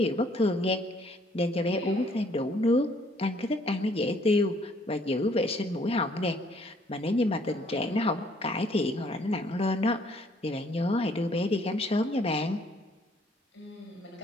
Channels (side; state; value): both; normal; correlation 0.63